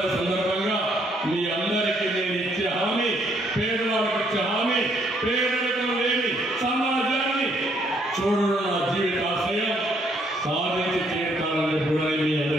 సందర్భంగా మీ అందరికీ నేను ఇచ్చే హామీ, పేదవాళ్ళకి ఇచ్చే హామీ, పేదరికం లేని సమాజాన్ని చూడడం నా జీవిత ఆశయం. సాధించి తీరుతానని కూడా మీ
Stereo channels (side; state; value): both; normal; correlation 0.69